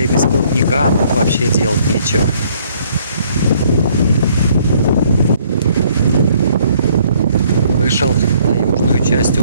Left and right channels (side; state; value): both; inverted; correlation -0.63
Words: без плотника, тут вообще делать нечего. Вышел на южную часть